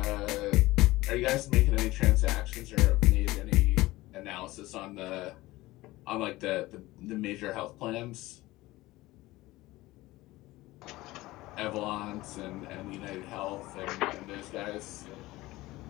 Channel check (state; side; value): quieter; right; 18.8 dB